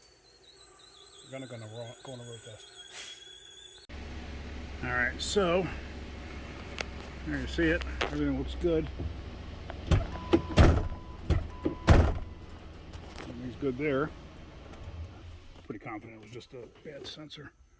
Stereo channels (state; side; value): identical; both; correlation 1.00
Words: going to go on a road test. All right, so there you see it. Everything looks good. Everything's good there. Pretty confident it was just a bad sensor.